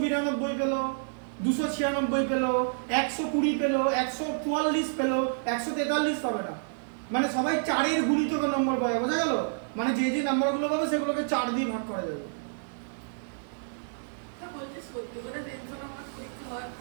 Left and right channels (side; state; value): left; silent; digital silence